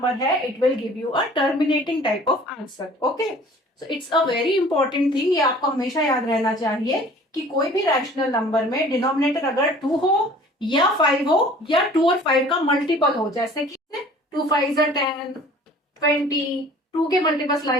है, it will give you a terminating type of answer. Okay, so it's a very important thing, ये आपको हमेशा याद रहना चाहिए कि कोई भी रैशनल नंबर में डिनोमिनेटर अगर 2 हो या 5 हो या 2 और 5 का मल्टीपल हो, जैसे कि 2 5 10, 20, 2 के मल्टीपल्स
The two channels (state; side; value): normal; both; correlation 0.49